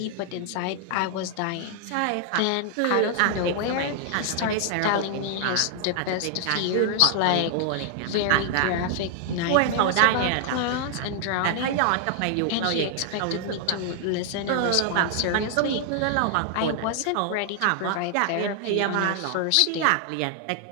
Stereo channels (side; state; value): both; different; correlation 0.00